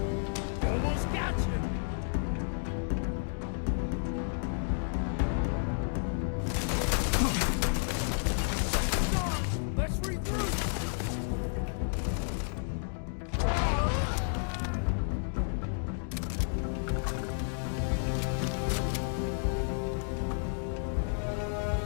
Almost got you! Let's regroup!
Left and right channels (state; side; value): silent; right; digital silence